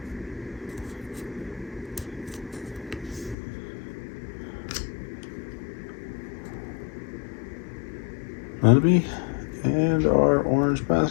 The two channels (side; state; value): right; drops out; at 3.4 s